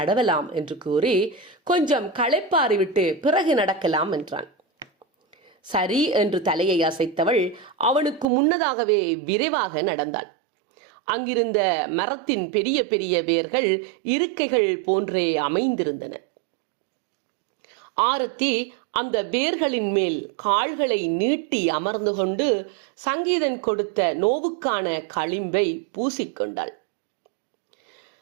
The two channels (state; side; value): drops out; left; at 8.2 s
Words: என்று கூறி கொஞ்சம் களைப்பாரி விட்டு பிறகு நடக்கலாம் என்றான். சரி என்று தலையை அசைத்தவள் அவனுக்கு முன்னதாகவே விரைவாக நடந்தாள். அங்கிருந்த மரத்தின் பெரிய பெரிய வேர்கள் இருக்கைகள் போன்றே அமைந்திருந்தன. ஆரத்தி அந்த வேர்களின் மேல் கால்களை நீட்டி அமர்ந்து கொண்டு சங்கீதன் கொடுத்த நோவுக்கான களிம்பை பூசிக்கொண்டாள்.